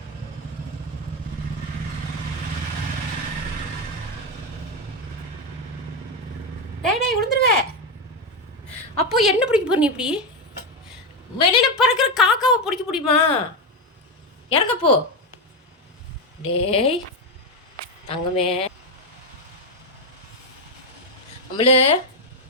டேய் விழுந்துருவே. அப்போ என்ன பிடிக்க போற நீ? இப்படி வெளியில் பறக்கிற காக்காவை பிடிக்க முடியுமா? இறங்கப்போ. டேய் தங்கமே, அம்மளு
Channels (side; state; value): both; normal; correlation 0.09